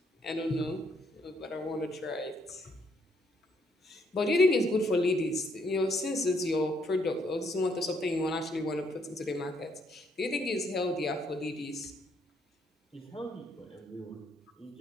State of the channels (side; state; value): both; normal; correlation 0.71